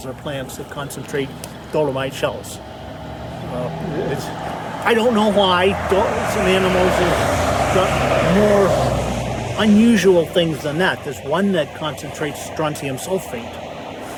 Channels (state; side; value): identical; both; correlation 1.00